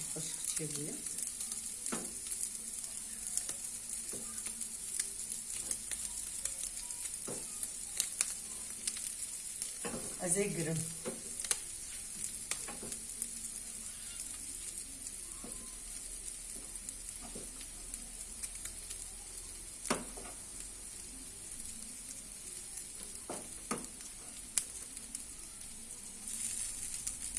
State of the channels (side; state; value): both; identical; correlation 1.00